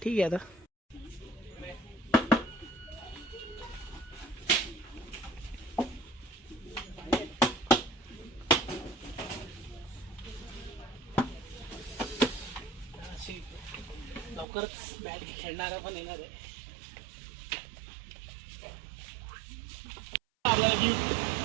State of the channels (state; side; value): drops out; left; at 14.5 s